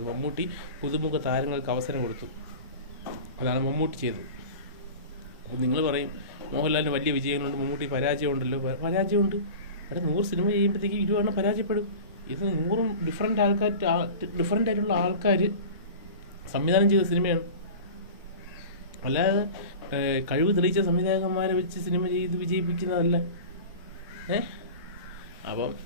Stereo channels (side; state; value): both; inverted; correlation -0.35